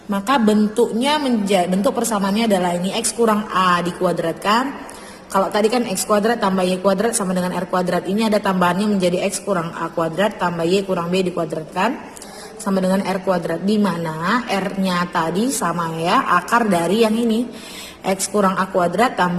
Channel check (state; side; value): identical; both; correlation 1.00